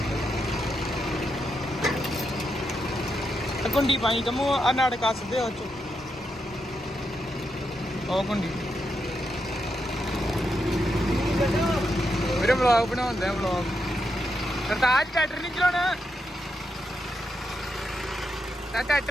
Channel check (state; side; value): normal; both; correlation 0.83